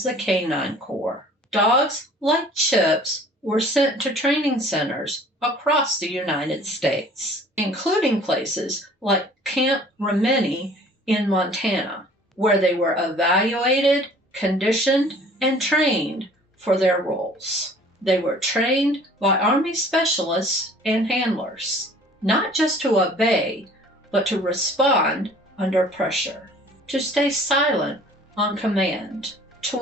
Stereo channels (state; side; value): normal; both; correlation 0.51